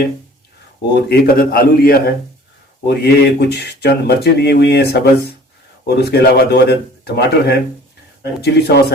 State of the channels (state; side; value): normal; both; correlation 0.50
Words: और एक अदद आलू लिया है और ये कुछ चंद मिर्चें ली हुई हैं सब्ज़, और उसके अलावा 2 अदद टमाटर हैं, चिली सॉस